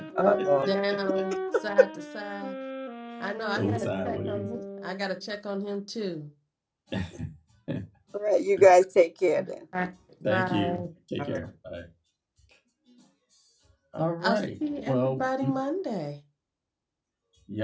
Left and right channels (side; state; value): both; identical; correlation 1.00